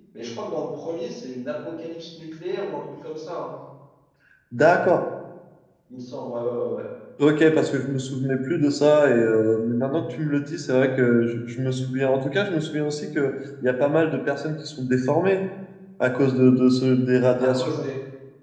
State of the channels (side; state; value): both; identical; correlation 1.00